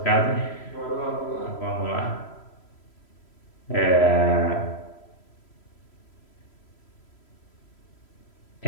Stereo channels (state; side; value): late; right; 3.1 ms